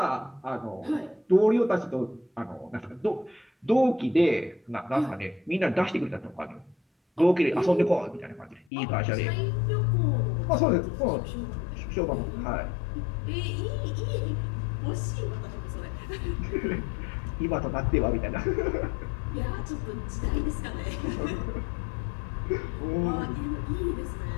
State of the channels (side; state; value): right; drops out; at 8.7 s